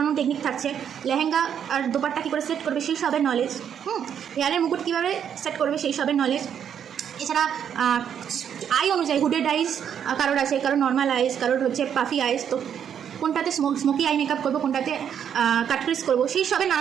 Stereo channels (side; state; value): left; quieter; 8.6 dB